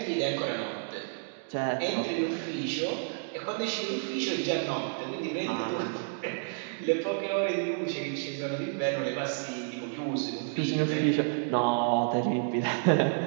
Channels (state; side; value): silent; left; digital silence